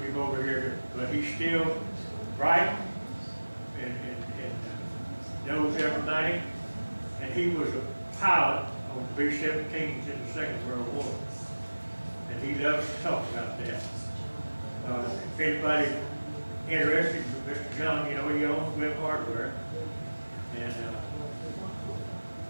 him over here. But he's still bright and knows everything. And he was a pilot on B-17s in the Second World War. And he loves to talk about that. If anybody interested, Mr. John, he owns Web Hardware. And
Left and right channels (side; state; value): both; inverted; correlation -1.00